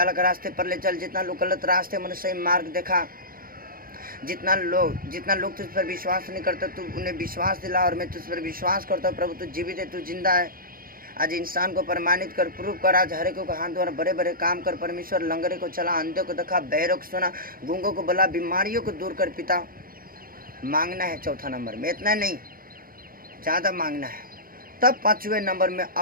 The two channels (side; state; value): left; late; 0.42 ms